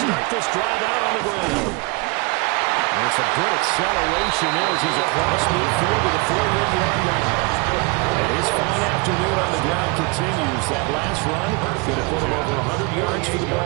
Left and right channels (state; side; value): quieter; left; 27.1 dB